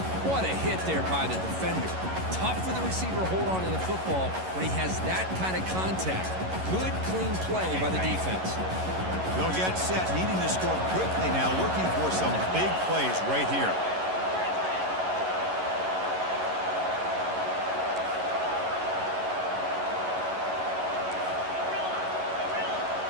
What a hit there by the defender. Tough for the receiver to hold on to the football when he has that kind of contact. Good, clean play by the defense. They'll get set, needing to score quickly now, looking for some big plays right here.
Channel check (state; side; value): late; left; 11 ms